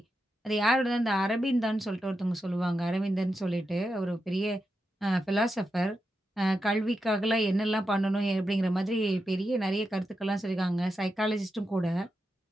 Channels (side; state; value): both; normal; correlation 0.87